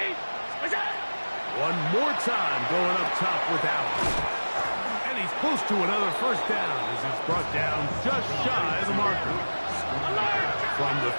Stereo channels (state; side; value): inverted; both; correlation -1.00